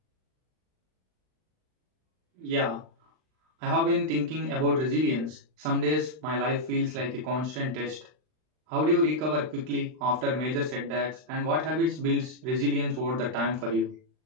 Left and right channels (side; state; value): left; late; 39 ms